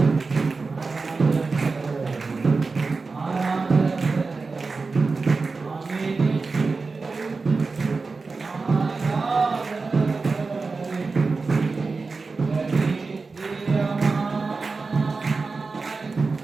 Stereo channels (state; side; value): quieter; left; 4.2 dB